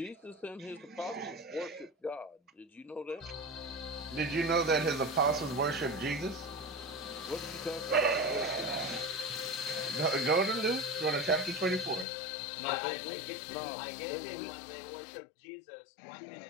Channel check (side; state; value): right; drops out; at 12.1 s